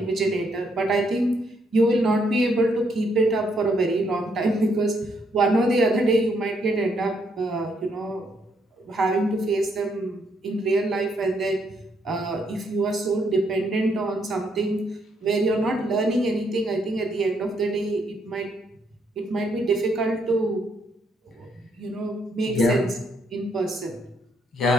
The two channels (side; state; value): both; normal; correlation 0.73